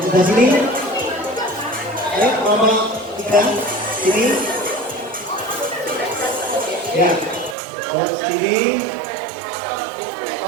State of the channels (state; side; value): drops out; left; at 7.6 s